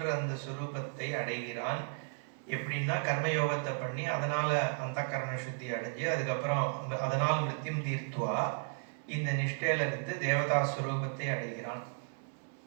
அந்த சுரூபத்தை அடைகிறான். எப்படின்னா கர்மயோகத்தை பண்ணி அதனால அந்த கரண சுத்தி அடைஞ்சு அதுக்கப்புறம் அதனால் மிருத்யும் தீர்த்துவா இந்த நிஷ்டையில இருந்து தேவதா சுரூபத்தை அடைகிறான்.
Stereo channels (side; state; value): left; silent; 55 dB below the other